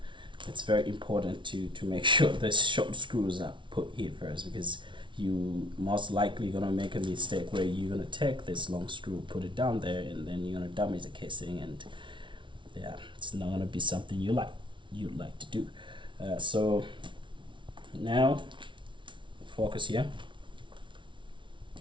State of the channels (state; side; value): late; left; 0.24 ms